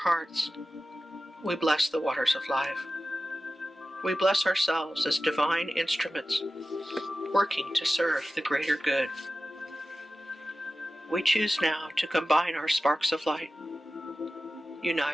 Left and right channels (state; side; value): normal; both; correlation 0.95